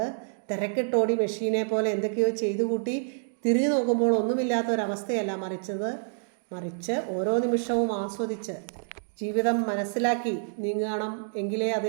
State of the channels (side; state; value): left; silent; digital silence